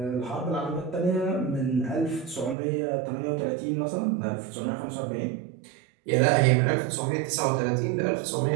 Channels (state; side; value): drops out; left; at 2.6 s